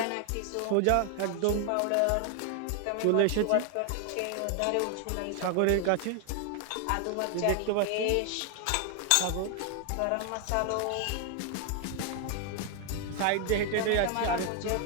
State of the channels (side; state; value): both; different; correlation 0.00